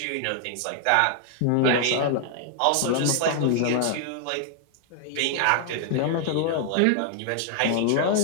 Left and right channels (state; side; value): different; both; correlation 0.00